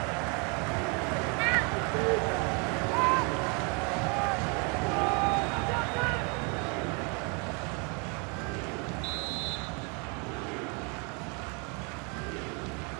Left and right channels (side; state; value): left; quieter; 33.8 dB